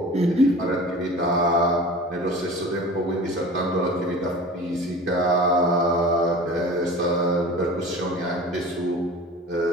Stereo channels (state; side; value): normal; both; correlation 0.39